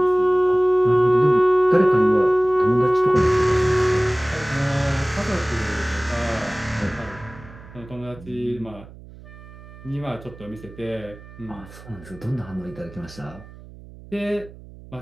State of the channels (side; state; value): right; noise; hum, 19 dB below the sound